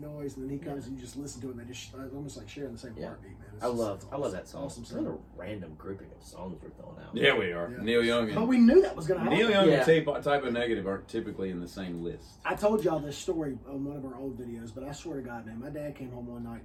And then he comes and you just listen to it and they just it's almost like sharing the same Yeah. heartbeat, man. It's I just- love it's that song. Awesome It's not scene. a random grouping of songs we're throwing out. Yeah, we are. Yeah. Neil Young But and we knew that was going to happen. Neil Young Yeah. and Typo Negative aren't typically in the same list. I told y'all this story on one of our old videos, but I swear to God, man, my dad came home one night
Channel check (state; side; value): identical; both; correlation 1.00